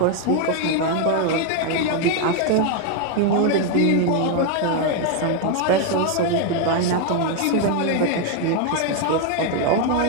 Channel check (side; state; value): both; different; correlation 0.01